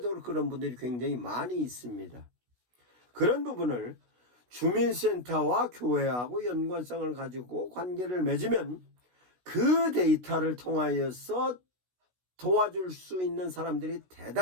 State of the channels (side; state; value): left; late; 16 ms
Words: 그런 분들이 굉장히 많이 있습니다. 그런 부분을 주민센터와 교회하고 연관성을 가지고 관계를 맺으면 그 데이터를 통하여서 도와줄 수 있는 사람들이